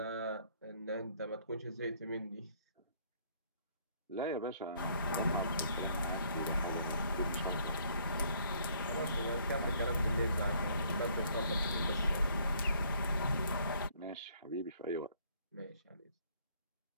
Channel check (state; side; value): inverted; both; correlation -0.64